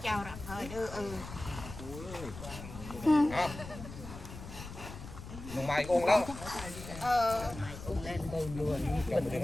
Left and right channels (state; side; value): noise; left; rumble, 12 dB below the sound